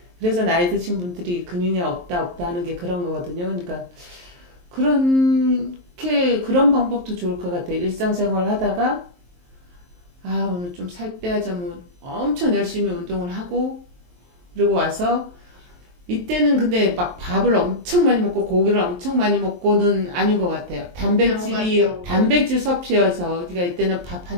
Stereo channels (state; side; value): late; left; 23 ms